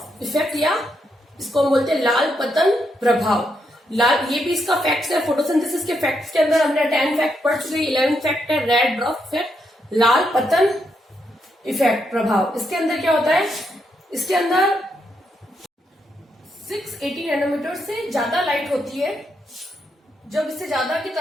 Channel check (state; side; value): normal; both; correlation 0.80